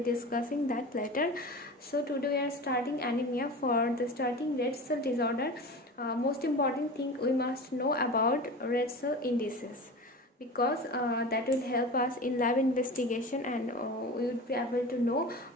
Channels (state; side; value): normal; both; correlation 0.32